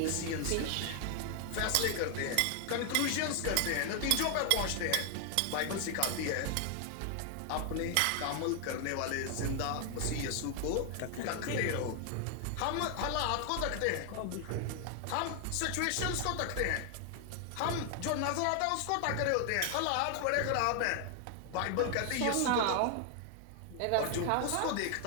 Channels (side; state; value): both; different; correlation 0.00